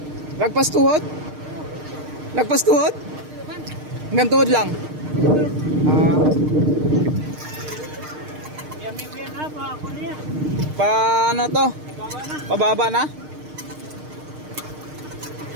Lagpas tuhod? Lagpas tuhod? Hanggang tuhod lang? Pa ano to? Pababa na?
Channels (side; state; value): left; late; 6.5 ms